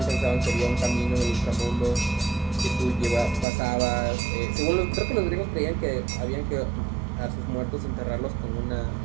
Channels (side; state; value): left; drops out; at 3.5 s